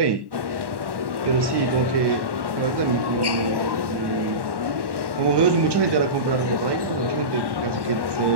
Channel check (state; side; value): late; left; 1.1 ms